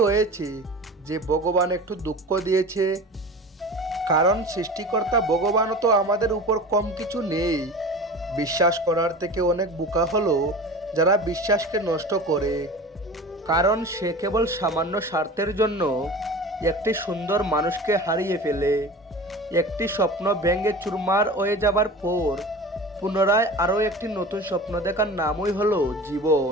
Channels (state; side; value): normal; both; correlation 0.35